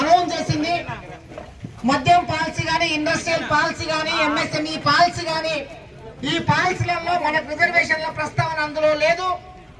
చేసింది. మద్యం పాలసీ గానీ, ఇండస్ట్రియల్ పాలసీ గానీ, ఎంఎస్ఎంఈ పాలసీ గానీ, ఈ పాలసీలలో మనకు రిజర్వేషన్ల ప్రస్తావన అందులో లేదు.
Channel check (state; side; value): identical; both; correlation 1.00